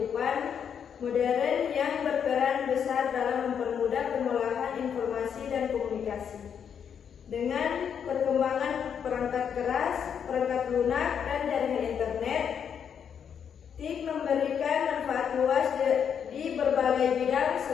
modern yang berperan besar dalam mempermudah pengolahan informasi dan komunikasi. Dengan perkembangan perangkat keras, perangkat lunak, dan jaringan internet, TIK memberikan manfaat luas di berbagai bidang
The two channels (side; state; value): right; quieter; 7.8 dB